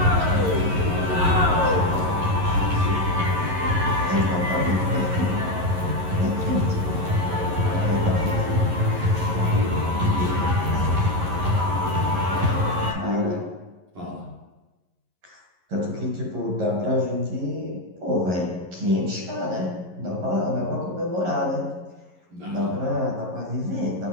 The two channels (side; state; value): left; late; 11 ms